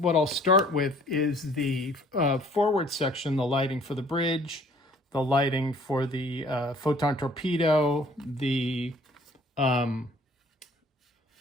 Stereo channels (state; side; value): normal; both; correlation 0.56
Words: I'll start with is the forward section, the lighting for the bridge, the lighting for the photon torpedo, the